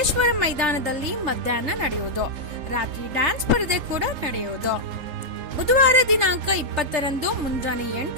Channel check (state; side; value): late; left; 3.8 ms